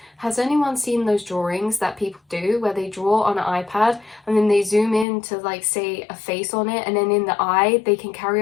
has anyone seen those drawings that people do where they draw on an iPad and then they zoom in to, like, say a face on it, and then in the eye they can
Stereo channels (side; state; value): right; drops out; at 5.1 s